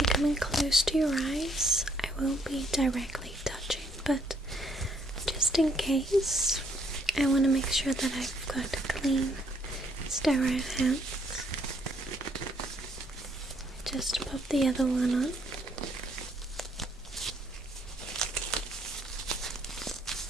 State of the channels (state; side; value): normal; both; correlation 0.69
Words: coming close to your eyes, I won't be directly touching, but just in case, I want to make sure that I've got clean, sterile hands. Just pop the other one on.